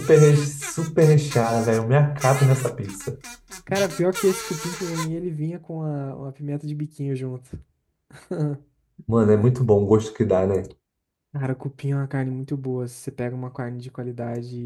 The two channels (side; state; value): both; identical; correlation 1.00